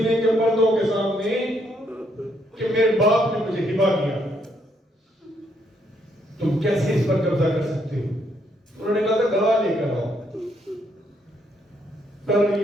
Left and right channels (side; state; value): both; normal; correlation 0.73